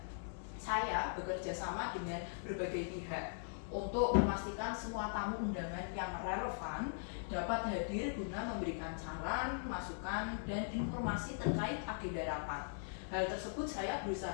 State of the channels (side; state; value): right; silent; 51 dB below the other